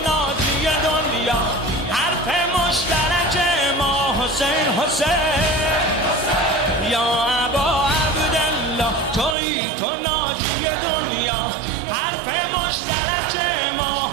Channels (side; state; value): left; drops out; at 9.3 s